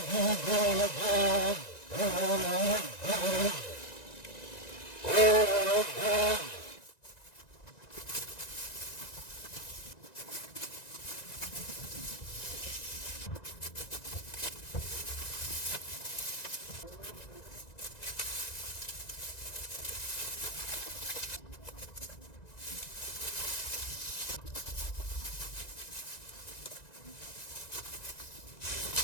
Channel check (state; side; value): late; right; 1.9 ms